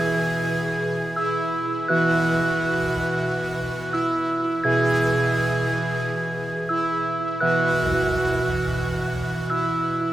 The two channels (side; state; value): both; normal; correlation 0.91